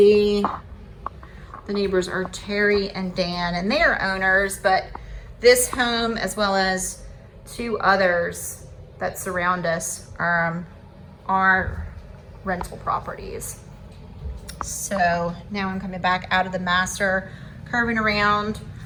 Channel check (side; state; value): both; identical; correlation 1.00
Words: The neighbors are Terry and Dan, and they are owners, but this home, as well as 2 others that surround us, are rental properties. So now I'm coming back out of the master, curving around.